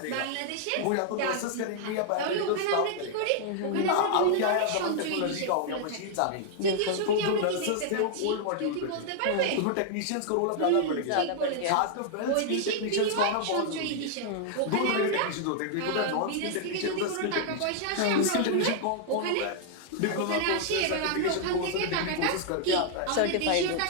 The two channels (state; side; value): different; both; correlation 0.00